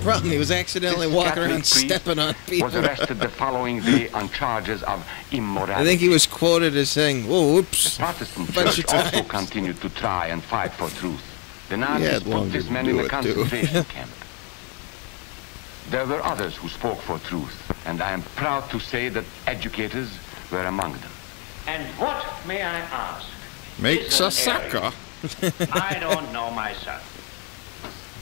He was accidentally This walking Catholic around priest stepping on people. was arrested the following day on charges of immorality. I think he was quoted as saying, "Whoa, The whoops." Protestant bunch church of also times. continued to try and fight for truth. The He Nazis had long put this to man do in a it, too. concentration camp. There were others who spoke for truth, and I am proud to say that educators were among them. And what, may I ask? Makes a sucker. I don't know myself.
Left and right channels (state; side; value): quieter; right; 34.9 dB